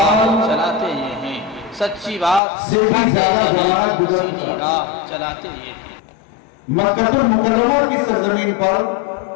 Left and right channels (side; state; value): right; drops out; at 2.4 s